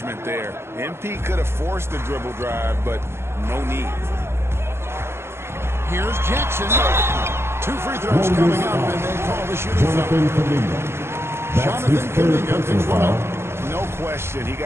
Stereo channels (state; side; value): late; left; 0.12 ms